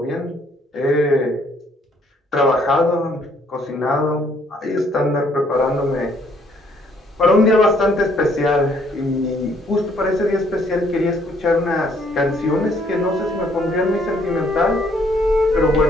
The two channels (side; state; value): both; normal; correlation 0.65